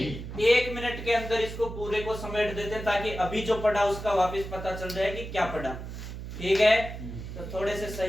1 मिनट के अंदर इसको पूरे को समेट देते ताकि अभी जो पढ़ा उसका वापस पता चल जाए कि क्या पढ़ा। ठीक है, तो थोड़े से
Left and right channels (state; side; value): noise; right; hum, 9 dB below the sound